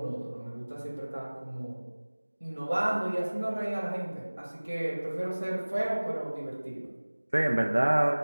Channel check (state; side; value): inverted; both; correlation -1.00